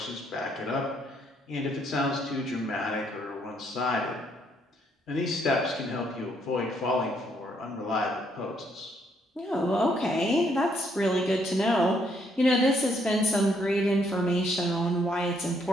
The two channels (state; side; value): normal; both; correlation 0.71